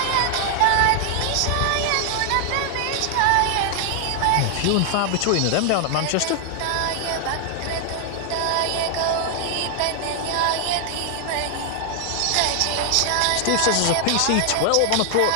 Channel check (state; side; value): different; both; correlation 0.00